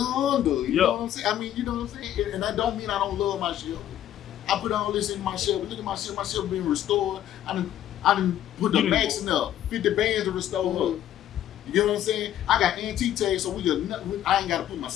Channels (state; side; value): quieter; right; 11.6 dB